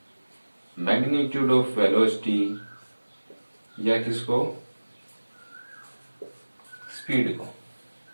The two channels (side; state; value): both; inverted; correlation -1.00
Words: मैग्नीट्यूड ऑफ वेलोसिटी या किसको, स्पीड को।